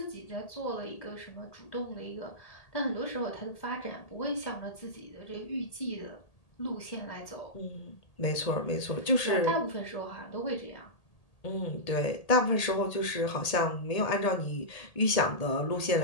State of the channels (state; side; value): late; right; 1.8 ms